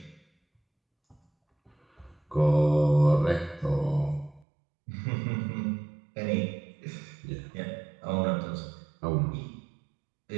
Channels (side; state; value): left; drops out; at 4.5 s